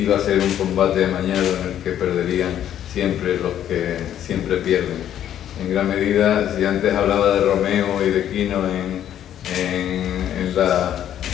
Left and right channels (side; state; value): right; quieter; 10.7 dB